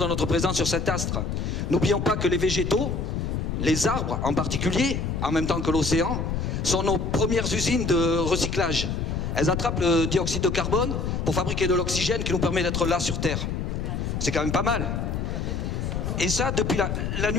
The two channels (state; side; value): noise; left; rumble, 2 dB below the sound